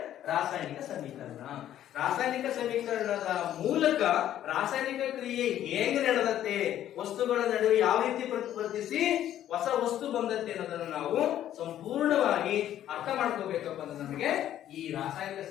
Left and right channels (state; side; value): quieter; right; 11.7 dB